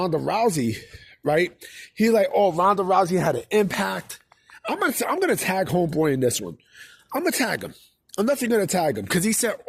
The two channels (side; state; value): both; identical; correlation 1.00